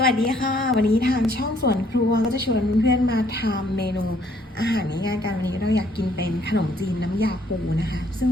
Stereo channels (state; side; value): normal; both; correlation 0.65